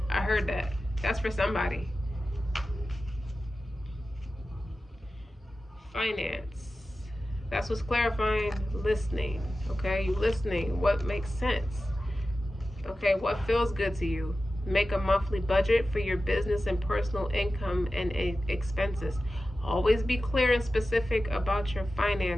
I heard that. That's for somebody. Finance. That's what's clarifying. Listening, okay? You listening. What makes sense? Okay, what feels good to you? Make a monthly budget for your business and personal income and expenses. Always be clear and specific about your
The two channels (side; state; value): both; normal; correlation 0.94